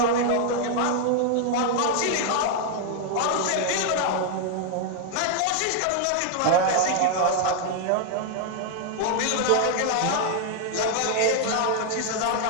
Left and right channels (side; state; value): both; different; correlation 0.00